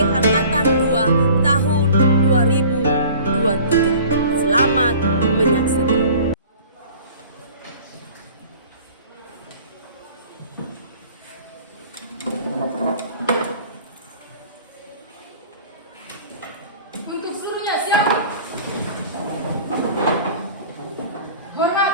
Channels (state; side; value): inverted; both; correlation -0.46